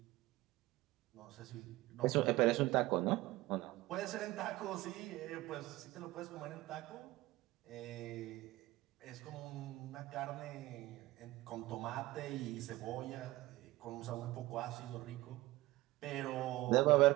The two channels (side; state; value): left; quieter; 18.5 dB